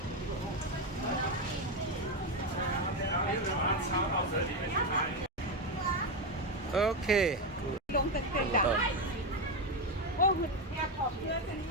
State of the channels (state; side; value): normal; both; correlation 0.10